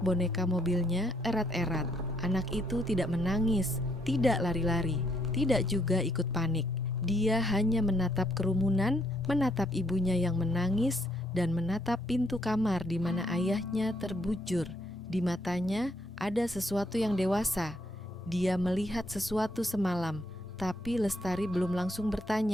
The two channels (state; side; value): normal; both; correlation 0.72